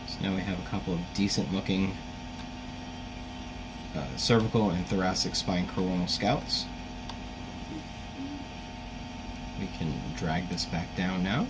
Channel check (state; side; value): identical; both; correlation 1.00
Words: So now we have a couple of decent looking cervical and thoracic spine coronal scouts. We can drag this back down now.